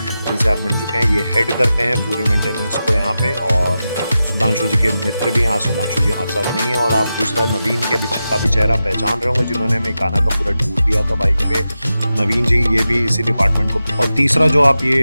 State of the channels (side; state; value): both; inverted; correlation -0.91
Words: आप मिल चुके हैं। ये हेड करते हैं पूरे मेंटेनेंस को यहाँ पे, और सुधांशु जी के मित्र भी हैं। आज सुधांशु जी हमारे साथ नहीं है। और आप दूसरा नवीन का भी चेहरा पहचान रहे होंगे, जिन्होंने हमें इकाना का पूरा टूर दिया था बाइक पे। नवीन जी, ये भी इसी डिपार्टमेंट को। और तीसरा जो आप